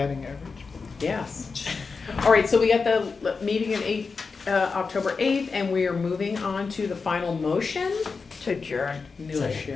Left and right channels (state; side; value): quieter; right; 4.7 dB